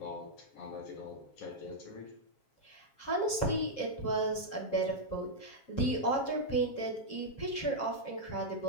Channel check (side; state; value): right; late; 7.4 ms